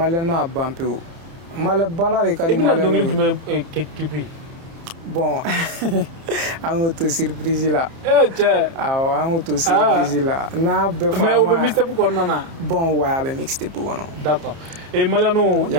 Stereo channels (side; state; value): left; late; 30 ms